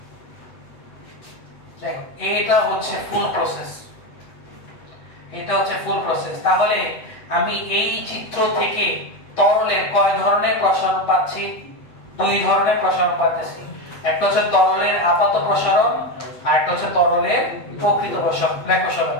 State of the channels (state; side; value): late; right; 7.7 ms